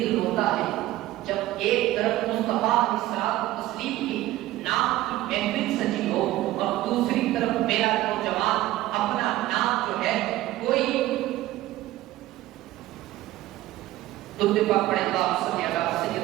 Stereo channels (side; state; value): left; quieter; 15.9 dB